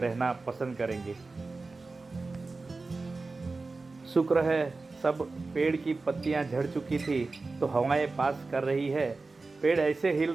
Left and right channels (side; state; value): left; quieter; 3.7 dB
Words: पसंद करेंगे। शुक्र है सब पेड़ की पत्तियां झड़ चुकी थी, तो हवाएं पास कर रही है। पेड़ ऐसे हिल